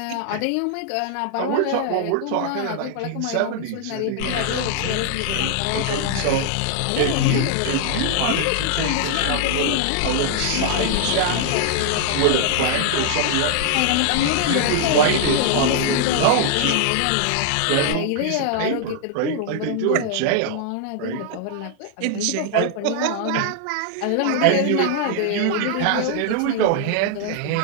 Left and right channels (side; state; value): both; different; correlation -0.01